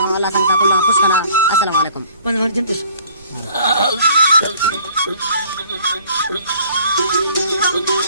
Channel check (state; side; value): inverted; both; correlation -0.54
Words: अल्लाह संता को फुटकना अस्सलाम वालेकुम कौन कौन जिंतुस